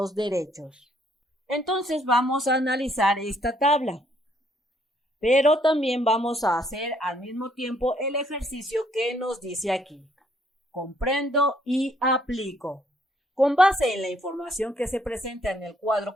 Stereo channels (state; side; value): normal; both; correlation 0.68